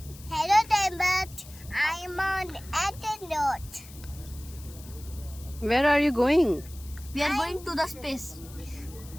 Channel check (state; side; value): noise; left; hiss, 19 dB below the sound